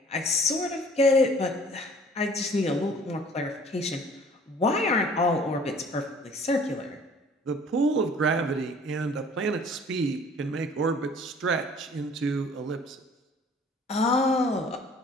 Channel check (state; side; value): normal; both; correlation 0.52